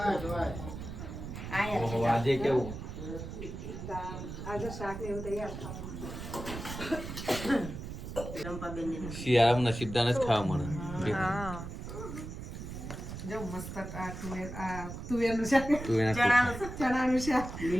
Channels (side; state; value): right; noise; rumble, 8 dB below the sound